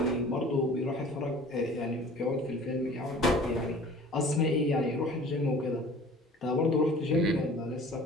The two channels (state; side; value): normal; both; correlation 0.46